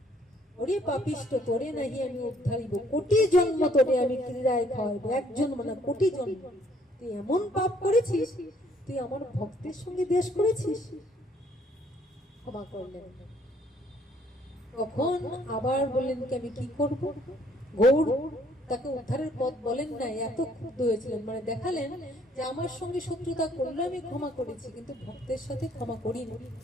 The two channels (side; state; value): both; normal; correlation 0.64